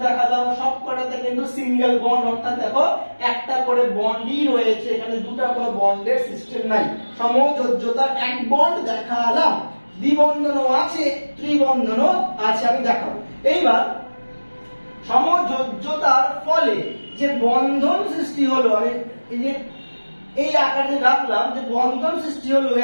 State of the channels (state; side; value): inverted; both; correlation -1.00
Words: দেখালাম সবকটাতে কিন্তু সিঙ্গেল বন্ড, অর্থাৎ দেখো একটা করে বন্ডই রয়েছে, এখানে দুটা কোনো বন্ডের সিস্টেম নাই। সমযোজ্যতার এক বন্ড দেখালাম, দ্বিবন্ধনও আছে, ত্রিবন্ধনও আছে, আমি দেখাবো। এইবার সমযোজ্যতার ফলে যে বন্ধন সৃষ্টি হলো, আমি এই যে এই আকারে রাখলাম, যে বন্ধন সৃষ্টি হলো